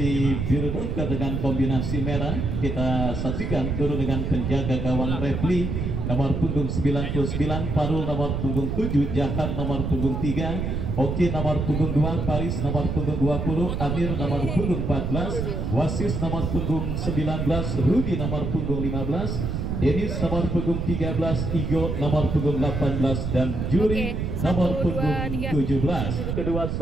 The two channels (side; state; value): right; noise; rumble, 2 dB below the sound